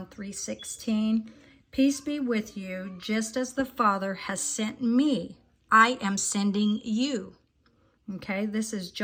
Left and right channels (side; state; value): both; identical; correlation 1.00